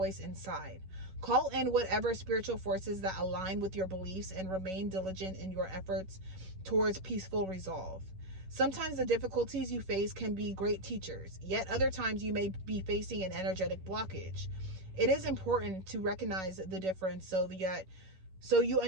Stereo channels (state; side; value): late; left; 11 ms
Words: inside. Call in whatever spiritual forces that align with your beliefs and remain diligent in your efforts towards peaceful resolve. Sometimes the difficulties you face can be great teachers, yet other times you may be facing an energetic blockage. It is important to recognize the difference so you